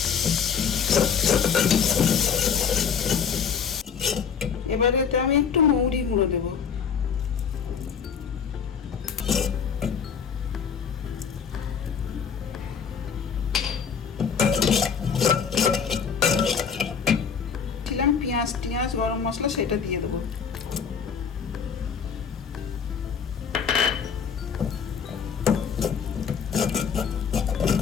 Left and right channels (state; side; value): quieter; right; 6.8 dB